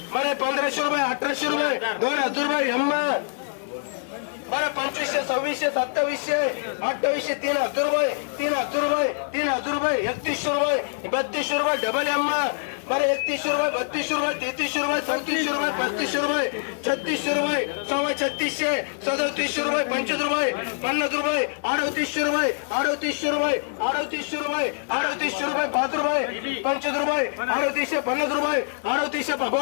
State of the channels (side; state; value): right; silent; 62 dB below the other